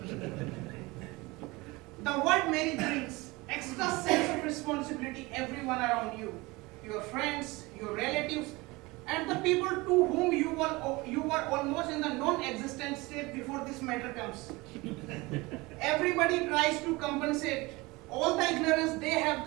The word marriage brings extra sense of responsibility everyone around you, your friends, your relatives, and the people to whom you were almost in the non-existent state before this matter comes. Everybody tries to compensate all the ignorance they have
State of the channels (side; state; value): left; quieter; 23.0 dB